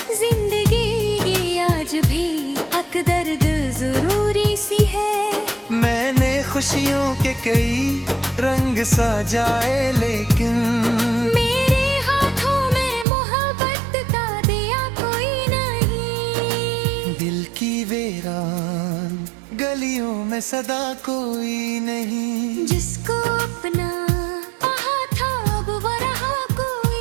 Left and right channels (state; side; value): drops out; left; at 13.1 s